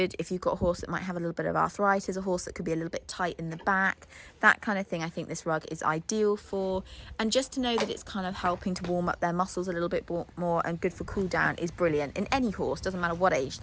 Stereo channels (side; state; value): both; identical; correlation 1.00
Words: if you've got a horse that might have a little bit of arthritis, a horse that could be a little bit tight in the back, that kind of thing. I think this rug is ideal for, and just to know that it's kind of helping to warm up their muscles a little bit more and good for cool down is brilliant in any horse, doesn't matter what age